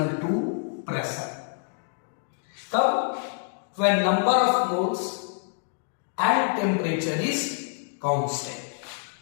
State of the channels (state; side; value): silent; right; digital silence